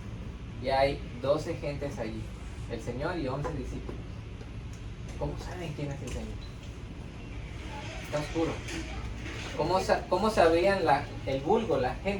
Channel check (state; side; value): identical; both; correlation 1.00